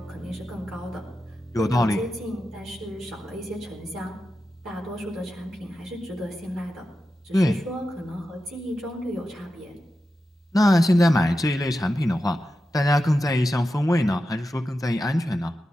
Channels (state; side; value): normal; both; correlation 0.91